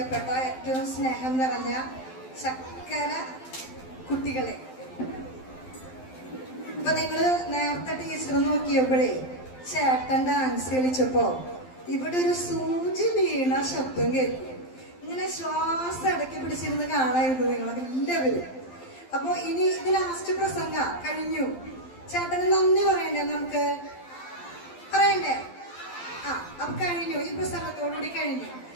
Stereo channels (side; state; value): right; late; 12 ms